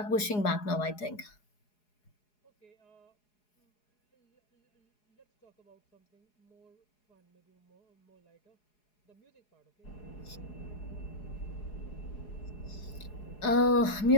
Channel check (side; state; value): right; late; 4.8 ms